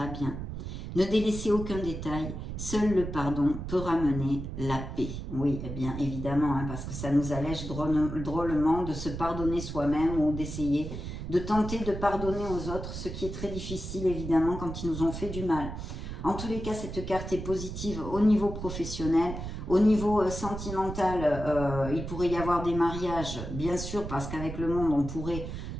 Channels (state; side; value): noise; right; rumble, 7 dB below the sound